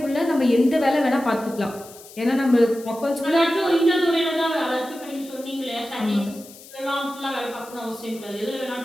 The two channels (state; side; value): noise; left; hiss, 19 dB below the sound